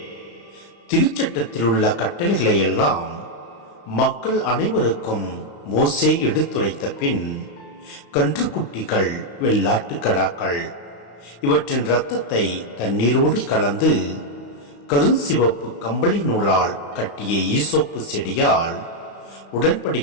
திருச்சட்டத்தில் உள்ள கட்டளைகளை எல்லாம் மக்கள் அனைவருக்கும் மோசே எடுத்துரைத்த பின் கன்றுக்குட்டிகள், வெள்ளாட்டு கடாக்கள் இவற்றின் இரத்தத்தை தண்ணீரோடு கலந்து கருஞ்சிவப்பு கம்பளி நூலால் கட்டிய ஈசோப்பு செடியால்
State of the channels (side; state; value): right; late; 35 ms